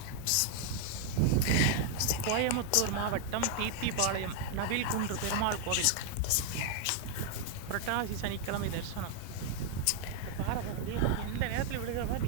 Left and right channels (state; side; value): different; both; correlation 0.00